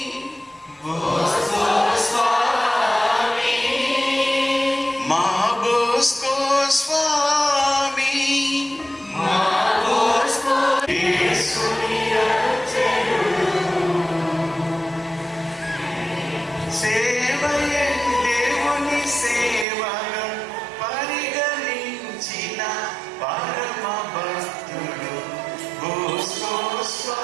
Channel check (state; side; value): drops out; left; at 19.7 s